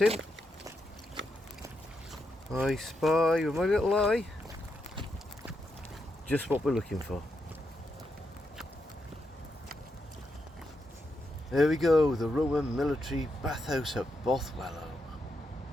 I spy with my little eye just what we're looking for. There we go, the Roman military bathhouse at Bothwellhaugh.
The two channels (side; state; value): both; normal; correlation 0.83